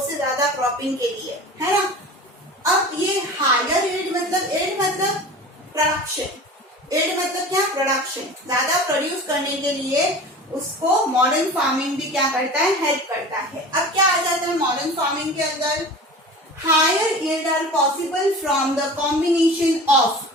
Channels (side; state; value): both; normal; correlation 0.37